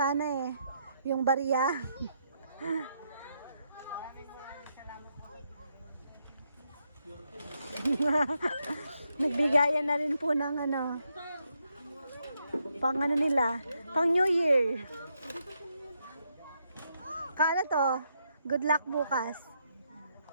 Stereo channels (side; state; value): both; inverted; correlation -0.79